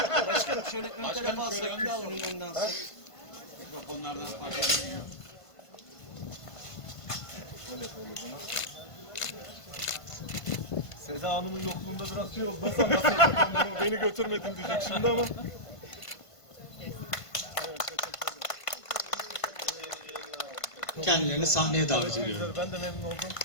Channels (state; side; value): late; right; 1.5 ms